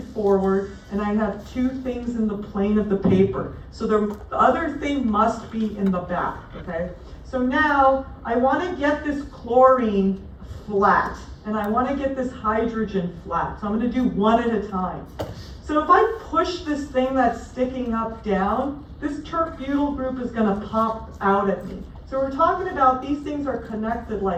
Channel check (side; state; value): both; identical; correlation 1.00